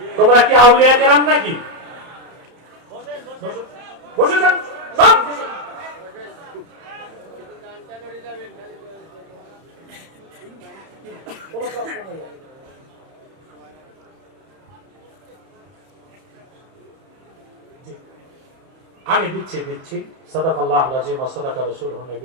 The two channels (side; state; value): left; late; 31 ms